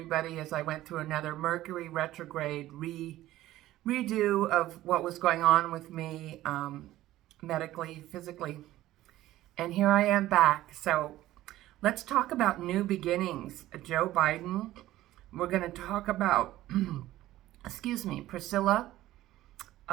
as I went through another Mercury retrograde redo of what was going on with me medically, physically. And here I am back. So let's talk about new beginnings. Joe Biden. We're going to talk about, Priscilla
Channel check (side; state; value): left; quieter; 15.2 dB